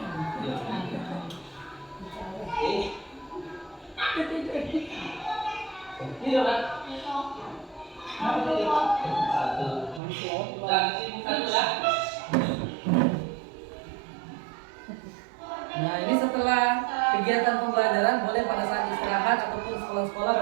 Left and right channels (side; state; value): left; drops out; at 10.0 s